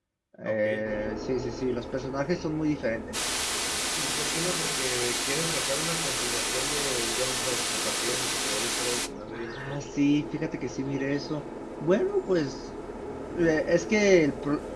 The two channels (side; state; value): both; identical; correlation 1.00